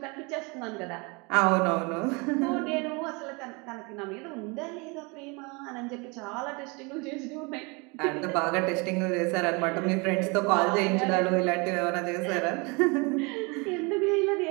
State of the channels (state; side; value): quieter; left; 28.9 dB